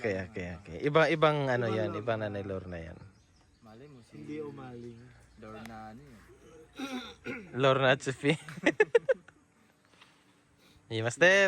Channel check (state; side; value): identical; both; correlation 1.00